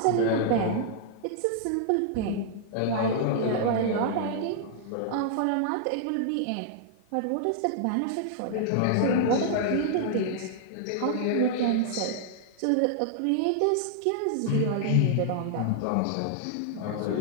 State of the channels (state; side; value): different; both; correlation -0.01